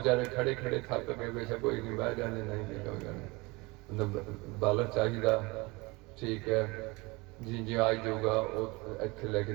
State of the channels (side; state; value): left; quieter; 24.8 dB